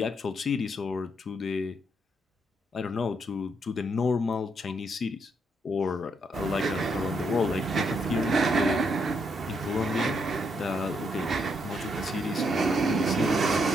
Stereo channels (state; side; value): normal; both; correlation 0.76